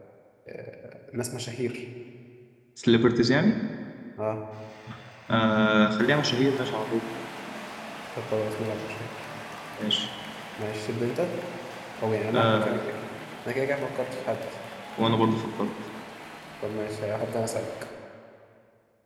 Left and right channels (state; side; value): identical; both; correlation 1.00